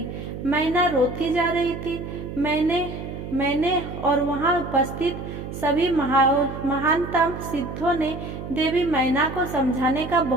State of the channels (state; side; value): noise; right; hum, 9 dB below the sound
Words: मैना रोती जा रही थी। मैंने और वहां उपस्थित सभी महानतम सिद्धों ने देवी मैना को समझाने का